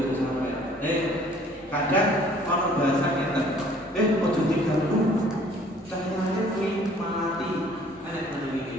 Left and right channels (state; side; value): normal; both; correlation 0.56